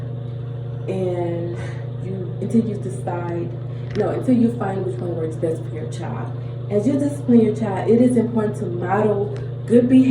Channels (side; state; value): both; identical; correlation 1.00